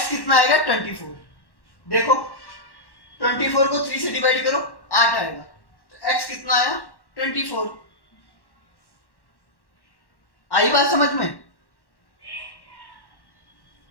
कितना आएगा, 24। देखो 24 को 3 से डिवाइड करो, 8 आएगा। तो x कितना आया, 24। आई बात समझ में।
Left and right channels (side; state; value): right; late; 1.1 ms